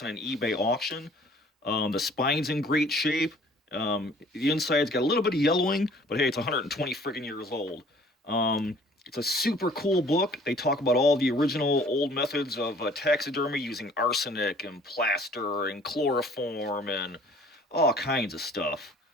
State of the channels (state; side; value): normal; both; correlation 0.54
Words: in an eBay auction. The spine's in great shape. The inside's got a little bit of yellowing, but hey, it's 120 friggin' years old. It's a super cool book. They talk about all the original old methods of taxidermy using arsenic and plaster and chloroform and all kinds of stuff.